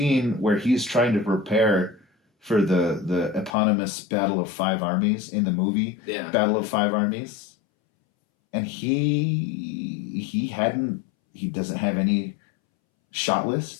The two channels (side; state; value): right; drops out; at 3.6 s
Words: where he's trying to prepare for the eponymous Battle of Five Armies in the movie Battle of Five Armies, and he doesn't have any shot